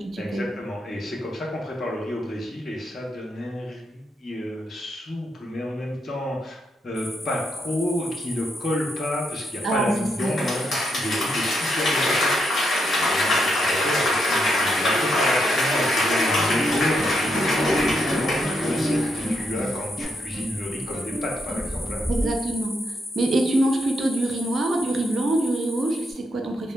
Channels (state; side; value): normal; both; correlation 0.81